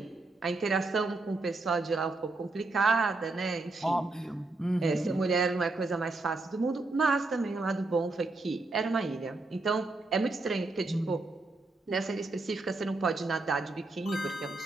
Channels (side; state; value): left; quieter; 3.2 dB